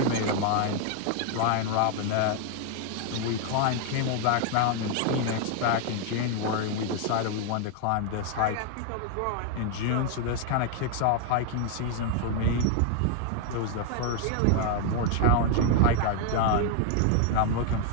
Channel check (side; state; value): both; different; correlation 0.00